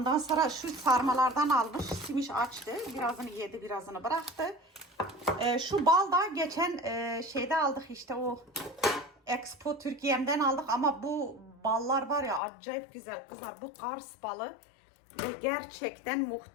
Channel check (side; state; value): right; drops out; at 12.4 s